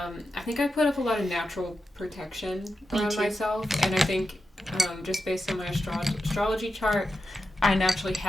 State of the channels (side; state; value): both; normal; correlation 0.89